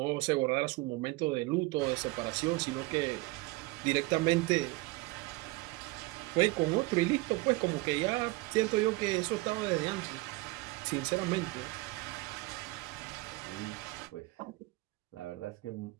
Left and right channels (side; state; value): left; quieter; 22.1 dB